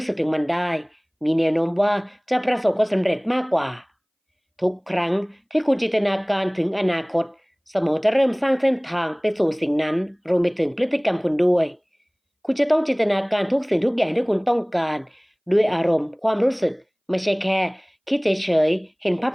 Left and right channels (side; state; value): both; identical; correlation 1.00